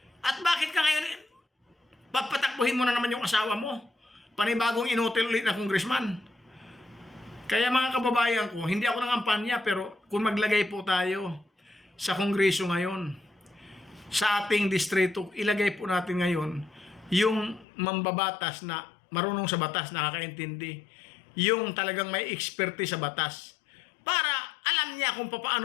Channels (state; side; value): drops out; right; at 17.7 s